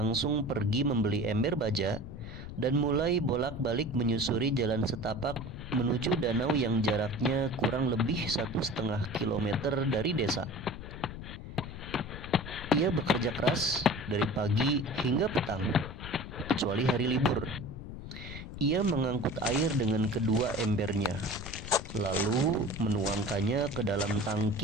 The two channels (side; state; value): left; noise; rumble, 10 dB below the sound